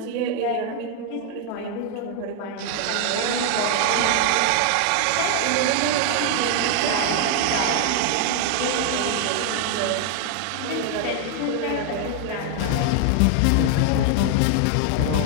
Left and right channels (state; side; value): different; both; correlation 0.00